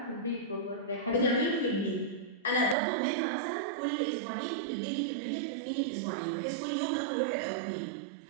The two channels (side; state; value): left; drops out; at 2.8 s